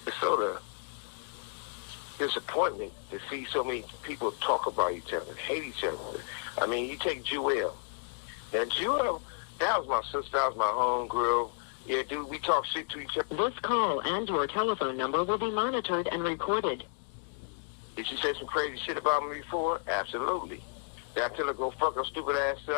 it's sort of disappointment to see so many people talk about each other, hate each other. I mean, you take Jewel. Now, Jewel, that was my sister, that was my homegirl. Yeah, dude, we talk shit to each other. This call and your telephone number will be monitored and recorded. Did she say some crazy shit about me before? Absolutely. Did I tell her go fuck her stupid ass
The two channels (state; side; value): silent; right; digital silence